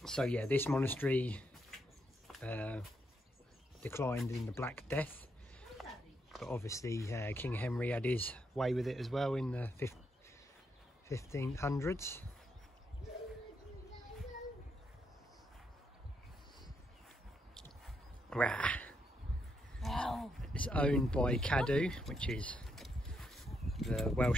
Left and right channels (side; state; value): both; normal; correlation 0.79